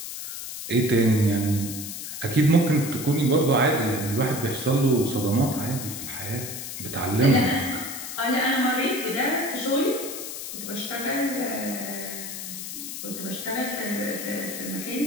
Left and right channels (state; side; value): noise; left; hiss, 8 dB below the sound